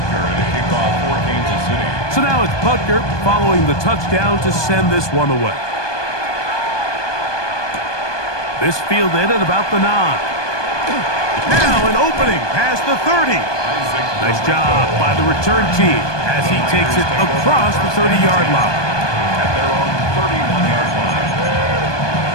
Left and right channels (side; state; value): right; late; 1.2 ms